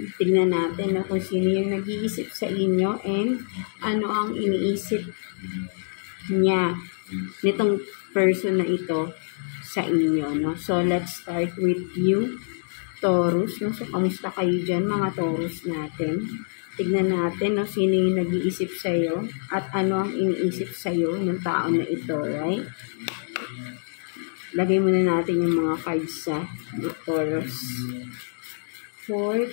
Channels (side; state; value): right; silent; digital silence